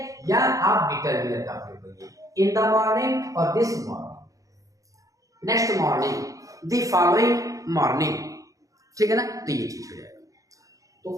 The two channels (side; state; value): left; late; 0.16 ms